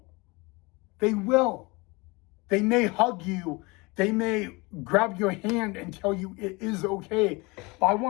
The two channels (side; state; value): right; quieter; 25.6 dB